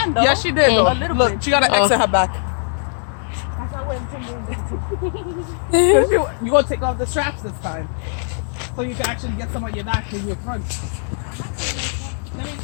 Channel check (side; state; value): right; silent; digital silence